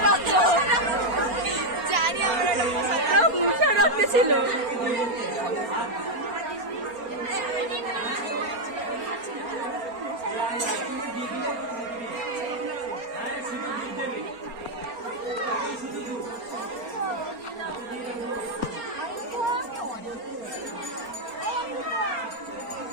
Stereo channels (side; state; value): left; late; 4.3 ms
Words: রাখতো। জানি আমরা মুখা রাখতে ছিল।